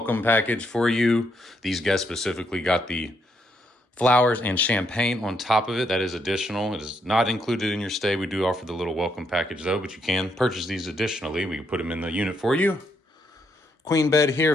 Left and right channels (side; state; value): both; normal; correlation 0.75